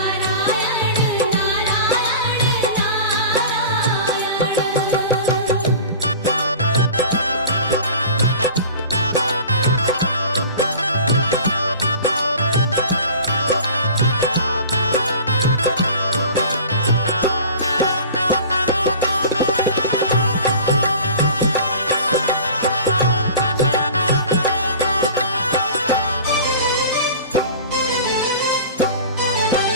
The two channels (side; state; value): both; inverted; correlation -0.39